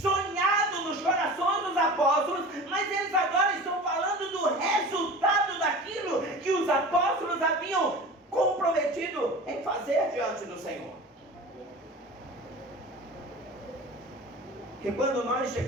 nos corações dos apóstolos, mas eles agora estão falando do resultado daquilo que os apóstolos haviam comprometido em fazer diante do Senhor. E quando nós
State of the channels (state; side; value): normal; both; correlation 0.36